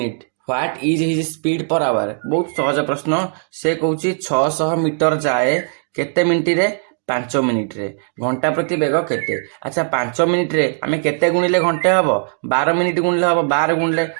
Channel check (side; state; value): left; silent; digital silence